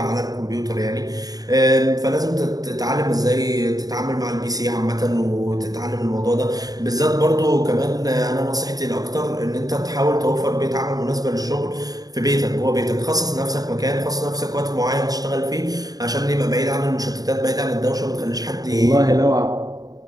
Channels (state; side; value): late; left; 0.18 ms